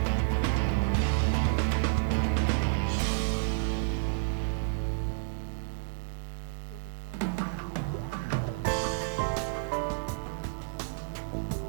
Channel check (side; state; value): left; quieter; 28.8 dB